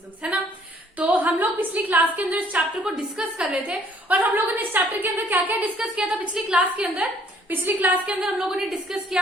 है ना। तो हम लोग पिछली क्लास के अंदर इस चैप्टर को डिस्कस कर रहे थे और हम लोगों ने इस चैप्टर के अंदर क्या क्या डिस्कस किया था पिछली क्लास के अंदर हम लोगों ने डिस्कस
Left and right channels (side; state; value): both; normal; correlation 0.61